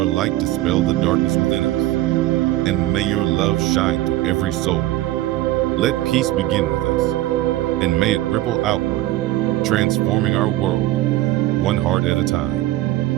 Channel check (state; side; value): quieter; left; 15.8 dB